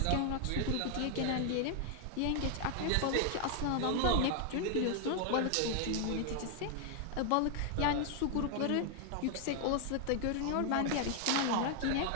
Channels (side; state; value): both; different; correlation 0.00